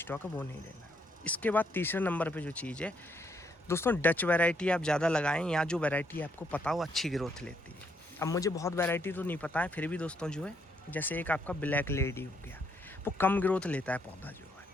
है वो नहीं लेना। इसके बाद तीसरे नंबर पे जो चीज़ है दोस्तों, डच वैरायटी आप ज़्यादा लगाएं, या जो वैरायटी आपको पता हो अच्छी ग्रोथ लेती है। अब मुझे बहुत वैरायटी तो नहीं पता है, फिर भी दोस्तों जो है जैसे एक आपका ब्लैक लेडी हो गया, वो कम ग्रोथ लेता है पौधा जो है।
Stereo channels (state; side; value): normal; both; correlation 0.73